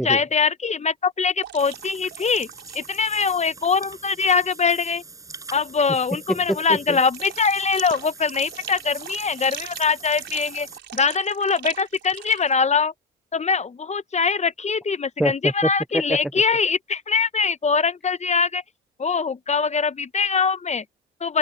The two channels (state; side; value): quieter; right; 4.4 dB